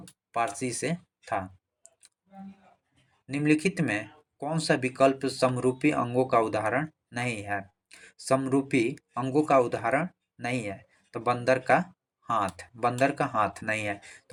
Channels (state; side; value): identical; both; correlation 1.00